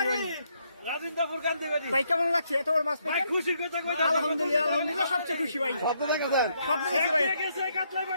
ভাই কেমন লাগছে এত বড় মাছ? খুশি কথা কই। আলহামদুলিল্লাহ আলহামদুলিল্লাহ, সবচেয়ে খুশি ভাই। স্বপ্ন দেখছি ভাই।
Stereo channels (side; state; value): both; inverted; correlation -0.74